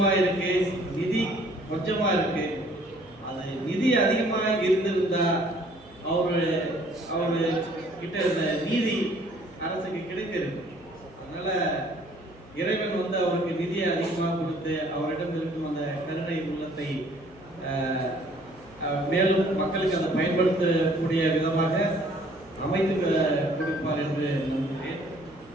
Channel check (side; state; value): right; noise; hum, 24 dB below the sound